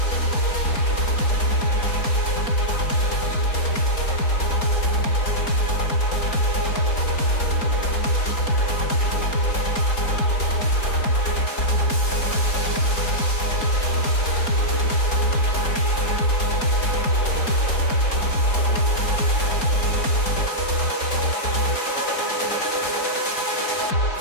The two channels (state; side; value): late; right; 4.3 ms